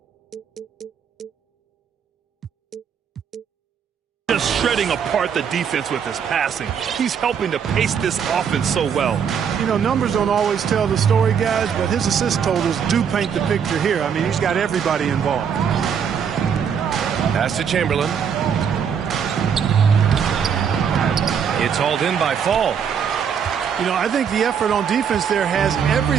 Just shredding apart the defense with his passing. He's helping to pace this offense so well. You know, numbers don't always tell the story, guys, but his assist totals do paint the picture here. I mean, he's got everybody involved. Pass to Chamberlain. It's hauled in by Fall. You know, I think the effort on defense there has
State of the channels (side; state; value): left; quieter; 7.4 dB